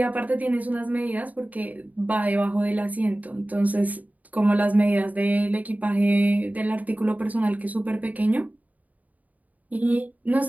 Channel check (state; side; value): late; left; 0.075 ms